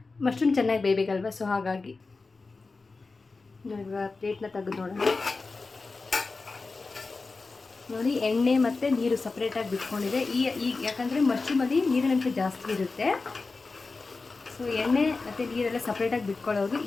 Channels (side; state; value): right; quieter; 3.9 dB